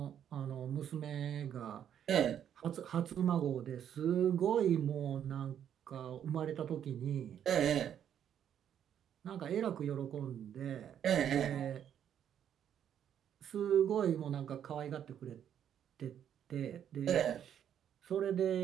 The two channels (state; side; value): quieter; left; 9.5 dB